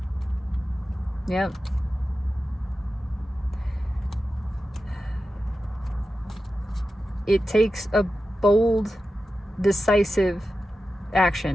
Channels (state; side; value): normal; both; correlation 0.92